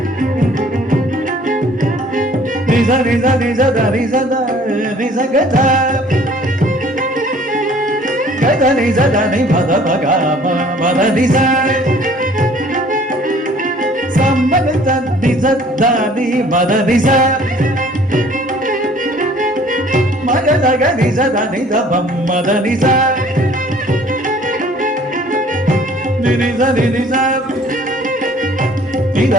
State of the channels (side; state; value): both; normal; correlation 0.54